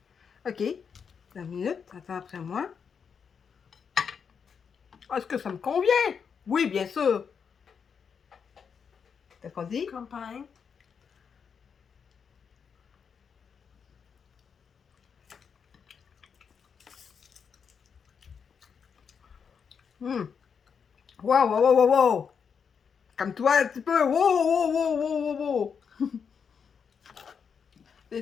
OK. 2 minutes, attends après moi. Est-ce que ça me convient? Oui, bien sûr. Qu'est-ce qu'on dit? Campagne. Wow, wow, wow, wow, wow. Comme toi, un petit peu. Wow, wow, wow, wow, wow, wow.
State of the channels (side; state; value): right; quieter; 6.6 dB